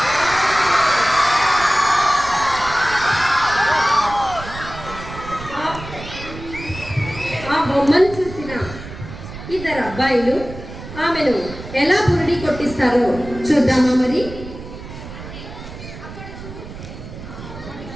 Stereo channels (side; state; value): right; noise; rumble, 13 dB below the sound